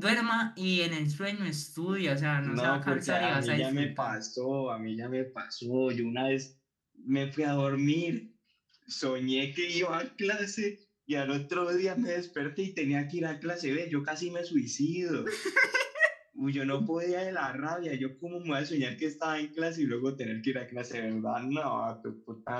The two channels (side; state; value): both; identical; correlation 1.00